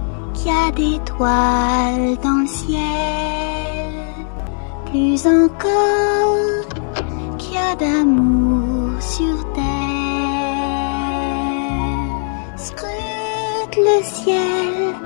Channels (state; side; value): silent; right; 58 dB below the other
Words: qu'il y a des toiles dans le ciel. Plus encore qu'il y a d'amour sur terre. Scrute le ciel,